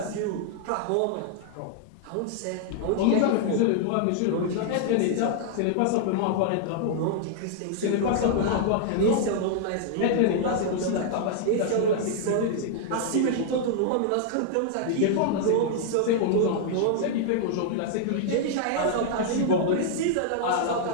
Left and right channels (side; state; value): both; different; correlation -0.01